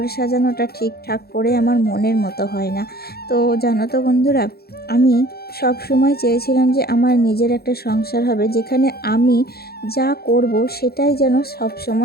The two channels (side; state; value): right; late; 0.46 ms